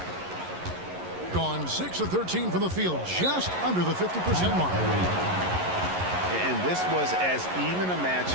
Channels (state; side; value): late; left; 11 ms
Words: Gone 6 of 13 from the field, just under the 50% mark. And this was as even a